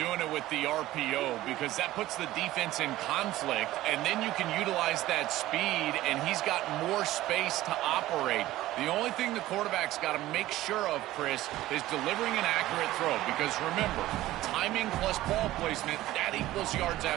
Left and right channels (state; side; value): quieter; left; 15.8 dB